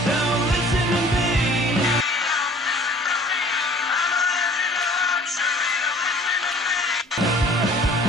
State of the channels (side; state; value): both; normal; correlation 0.51